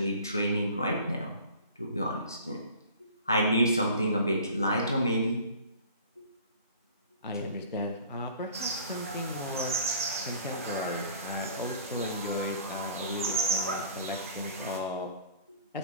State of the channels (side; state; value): both; inverted; correlation -0.46